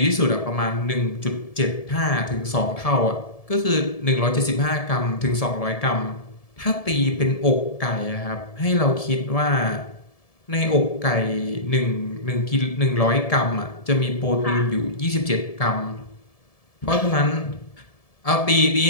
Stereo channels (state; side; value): late; right; 1.7 ms